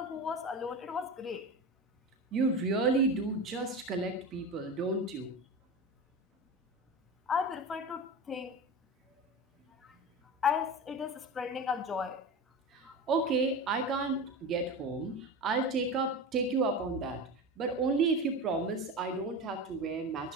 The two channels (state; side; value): normal; both; correlation 0.27